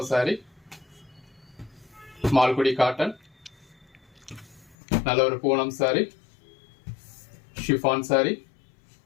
சாரி, மால்குடி காட்டன், நல்ல ஒரு பூனம் சாரி, ஷிஃபான் சாரி.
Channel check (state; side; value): drops out; right; at 4.8 s